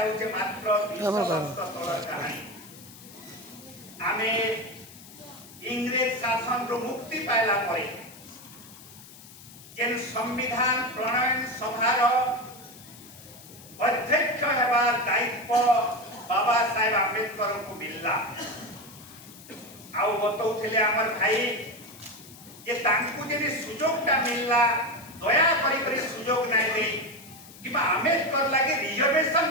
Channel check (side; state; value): left; noise; hiss, 19 dB below the sound